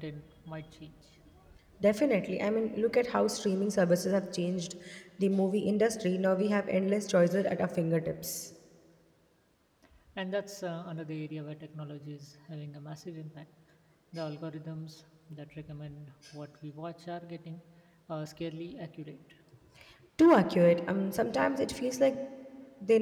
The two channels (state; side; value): identical; both; correlation 1.00